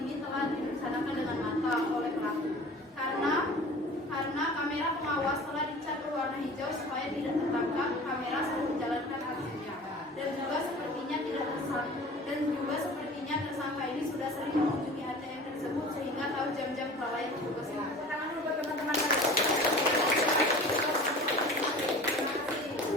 telah direncanakan dengan matang oleh pelaku. Karena kamera pengawas telah dicat berwarna hijau supaya tidak tertangkap kamera saat menjalankan aksinya. Dan juga sepertinya tersangka ini sudah sering mengunjungi ATM tersebut sehingga tahu jam-jam kelalaian petugas ini. Tangan dulu buat teman-teman kalian.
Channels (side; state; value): both; normal; correlation 0.41